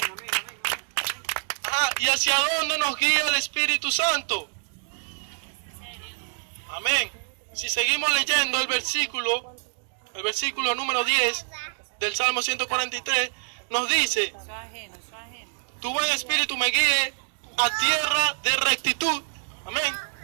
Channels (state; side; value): silent; left; digital silence